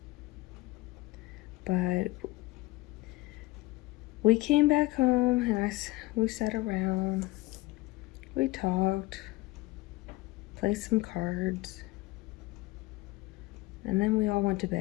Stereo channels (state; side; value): quieter; right; 19.6 dB